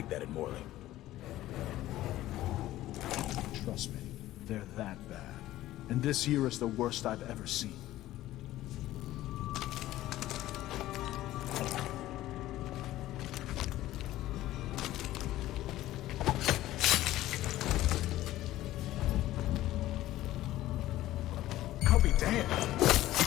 that in Morley. Trust me, they're that bad. And this year is the worst I've ever seen. I'll be damned.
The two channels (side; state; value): right; quieter; 15.2 dB